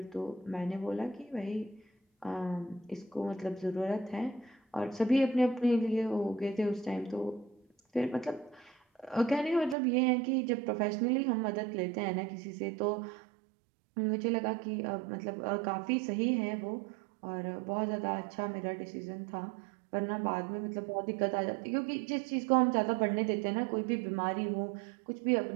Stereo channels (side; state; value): left; drops out; at 9.8 s